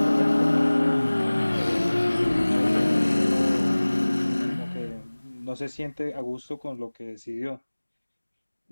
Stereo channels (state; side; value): inverted; both; correlation -1.00